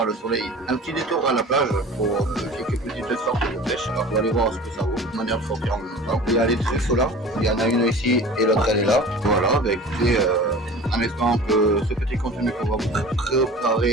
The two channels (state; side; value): normal; both; correlation 0.40